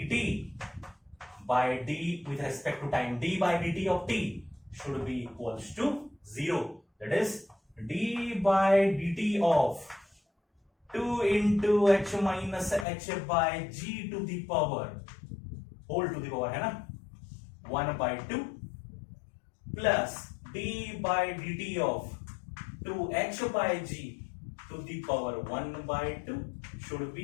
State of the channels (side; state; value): right; drops out; at 12.9 s